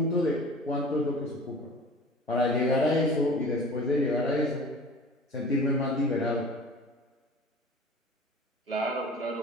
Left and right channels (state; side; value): normal; both; correlation 0.42